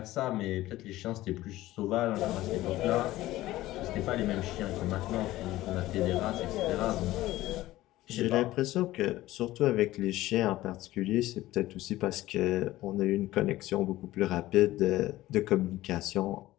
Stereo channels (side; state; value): right; quieter; 16.3 dB